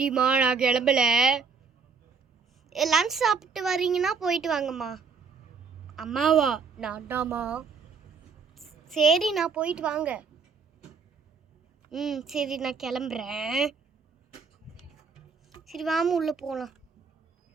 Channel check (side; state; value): left; quieter; 5.3 dB